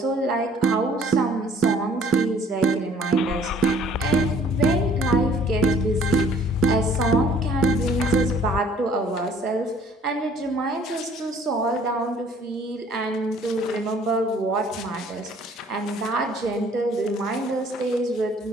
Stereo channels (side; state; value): both; normal; correlation 0.56